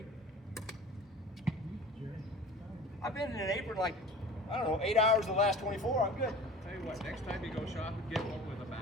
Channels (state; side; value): normal; both; correlation 0.41